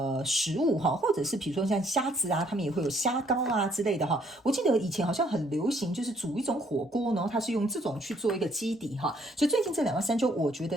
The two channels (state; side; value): normal; both; correlation 0.66